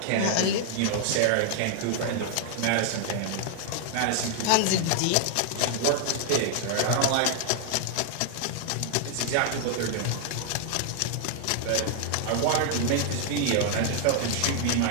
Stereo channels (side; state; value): both; different; correlation 0.00